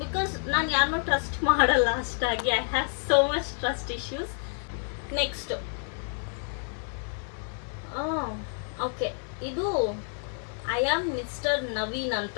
ಬಿಕಾಸ್ ನಾನು ಯಾರನ್ನೂ ಟ್ರಸ್ಟ್ ಮಾಡಲ್ಲ ಅಷ್ಟಾಗಿ. I have so much trust issues. Next, okay, ಇದು ಐ ಆಮ್ ಮಿಸ್ಟರ್ ನವೀನ್ ಅಂತ.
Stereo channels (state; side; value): silent; right; 56 dB below the other